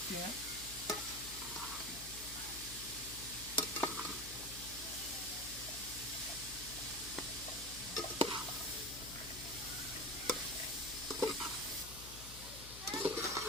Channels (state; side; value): noise; left; hum, 12 dB below the sound